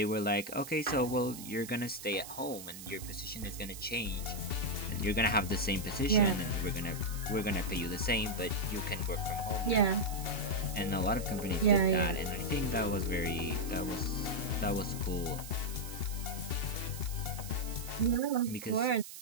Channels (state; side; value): noise; right; hiss, 12 dB below the sound